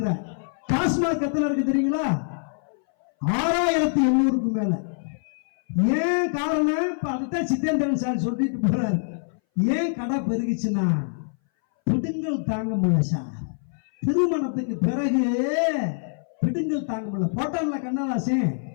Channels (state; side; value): silent; right; 60 dB below the other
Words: டாஸ்மாக் எத்தனை இருக்கு தெரியுங்களா? 6800க்கு மேல. ஏன் காரணம்? இப்ப அதுதான் சித்தேந்திரன் சார் சொல்லிட்டு போறாரு. ஏன் கடை பெருகிச்சுன்னா பிடுங்கல் தாங்க முடியல சார். திருமணத்துக்கு பிறகு பிடுங்கல் தாங்க முடியல. போட்டான்ல கண்ணதாசன்,